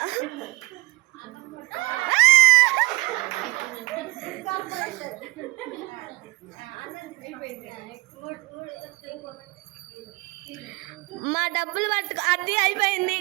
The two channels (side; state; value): left; quieter; 23.5 dB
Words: మా డబ్బులు పట్టుకో. అది అయిపోయింది.